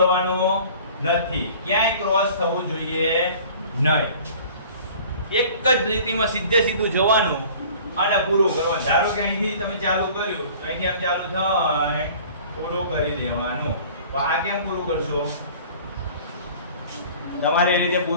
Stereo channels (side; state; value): both; inverted; correlation -0.47